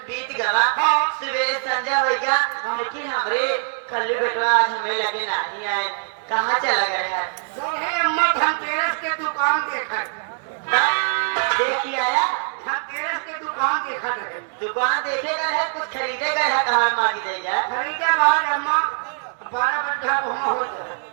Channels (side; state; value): left; silent; 56 dB below the other